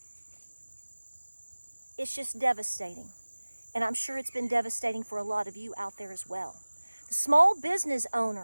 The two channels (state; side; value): inverted; both; correlation -1.00